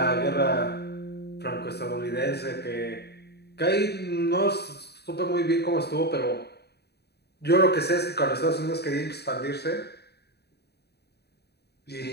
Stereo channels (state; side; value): late; right; 0.48 ms